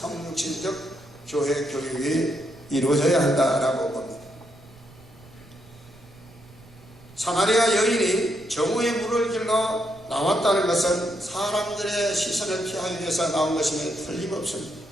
교회 교육이 이루어져야 한다라고 봅니다. 사마리아 여인이 정오의 물을 길러 나왔다는 것은 사람들의 시선을 피하기 위해서 나온 것임에 틀림없습니다.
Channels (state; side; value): noise; right; rumble, 24 dB below the sound